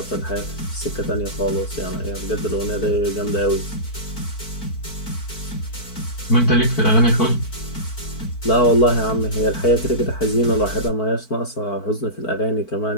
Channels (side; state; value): right; late; 4.5 ms